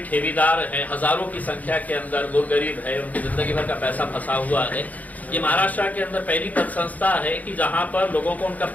ठेकेदार हैं, हजारों की संख्या के अंदर गुरगरीब है, उनकी जिंदगी भर का पैसा फंसा हुआ है। ये महाराष्ट्र के अंदर पहली पद संस्था है कि जहां पर लोगों को उनका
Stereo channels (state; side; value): late; right; 0.077 ms